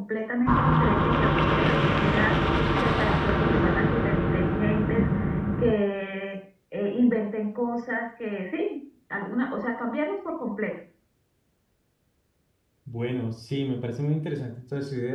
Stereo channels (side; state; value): both; identical; correlation 1.00